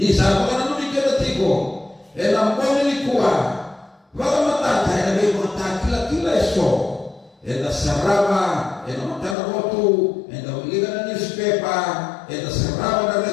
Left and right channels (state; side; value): drops out; right; at 9.3 s